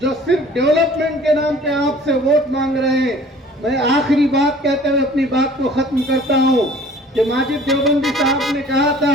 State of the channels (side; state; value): both; normal; correlation 0.50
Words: जो सिर्फ डेवलपमेंट के नाम पे आपसे वोट मांग रहे हैं। मैं आखिरी बात कहते हुए अपनी बात को खत्म करता हूं कि माजिद देवबंदी साहब ने कहा